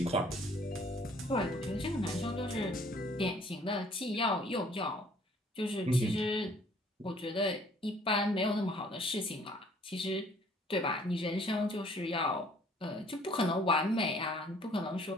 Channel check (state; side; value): normal; both; correlation 0.58